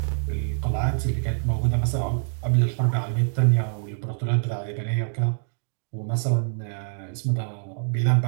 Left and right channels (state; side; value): silent; left; digital silence